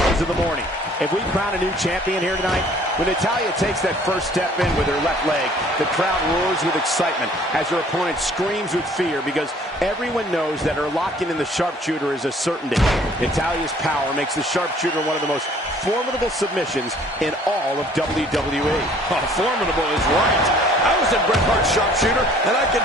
of the morning. If we crown a new champion here tonight, when Natalya takes that first step in with her left leg, the crowd roars with excitement as her opponent screams with fear because everyone knows that her locking in the sharpshooter is a certainty. Natalya's power makes the sharpshooter one of the most formidable submissions in all of WWE. Oh, formidable is right. I was in Bret Hart's sharpshooter, and I can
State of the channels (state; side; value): normal; both; correlation 0.56